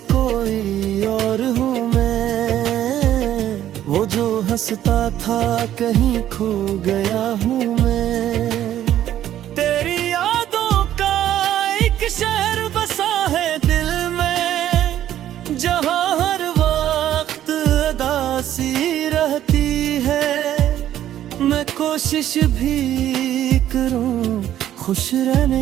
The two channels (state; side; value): quieter; left; 11.8 dB